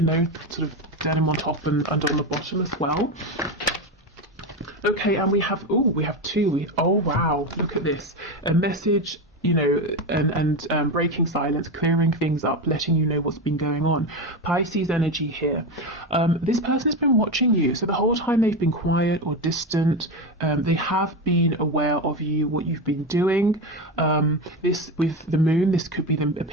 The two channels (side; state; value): both; normal; correlation 0.17